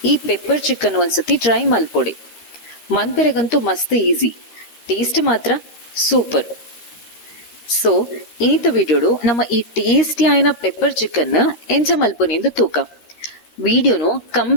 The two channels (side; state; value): right; late; 13 ms